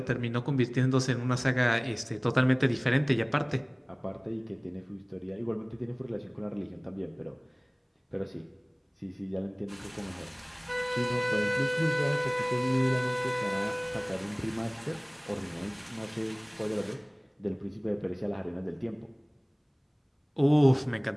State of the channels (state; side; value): identical; both; correlation 1.00